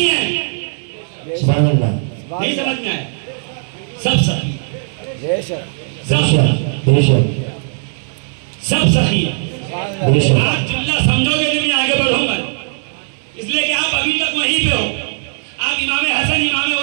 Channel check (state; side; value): silent; left; digital silence